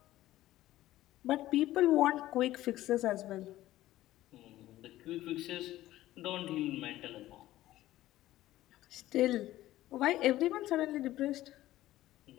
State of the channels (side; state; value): right; quieter; 15.2 dB